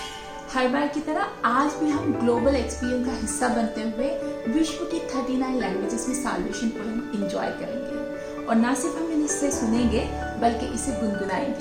हर बार की तरह आज भी हम ग्लोबल एक्सपीरियंस का हिस्सा बनते हुए विश्व की 39 लैंग्वेजेस में साल्वेशन पोएम एंजॉय करेंगे और न सिर्फ हम इसे सुनेंगे बल्कि इसे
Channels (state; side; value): identical; both; correlation 1.00